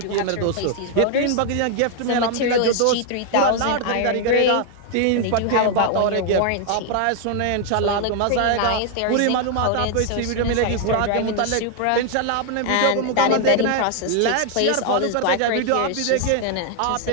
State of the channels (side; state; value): both; different; correlation 0.00